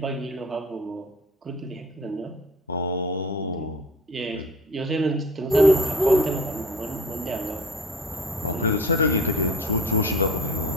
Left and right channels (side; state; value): both; normal; correlation 0.42